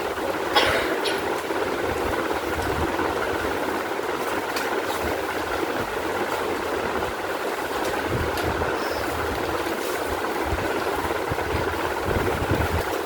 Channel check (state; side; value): identical; both; correlation 1.00